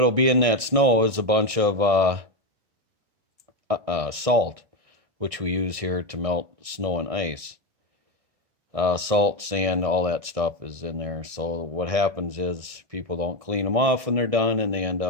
be in that snow is a bunch of salt, which we use here to melt snow and ice. Salt, sand, all that stuff is in there. So what happens is people don't clean them off when they're done, and they end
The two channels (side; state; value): left; late; 1.6 ms